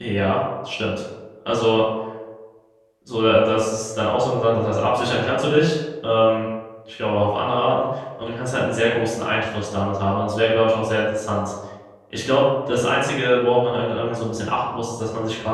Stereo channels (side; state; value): both; identical; correlation 1.00